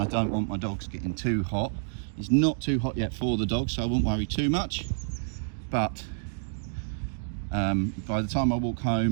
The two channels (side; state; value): left; silent; digital silence